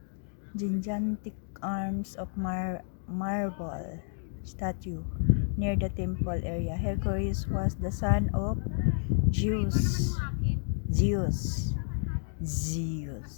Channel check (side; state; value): right; silent; digital silence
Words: gigantic arms of marble statue near the temple area. Hercules was the son of Zeus,